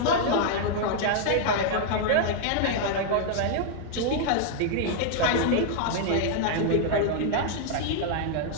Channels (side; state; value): both; different; correlation 0.00